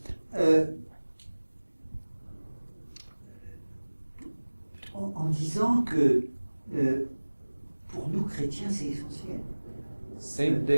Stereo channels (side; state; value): both; inverted; correlation -1.00